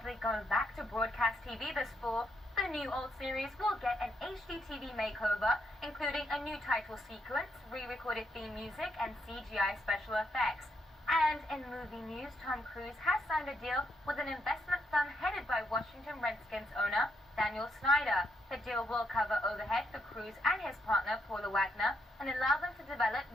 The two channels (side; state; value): both; normal; correlation 0.78